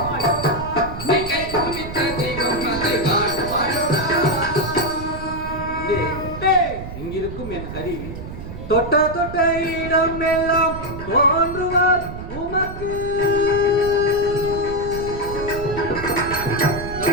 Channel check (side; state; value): right; noise; rumble, 10 dB below the sound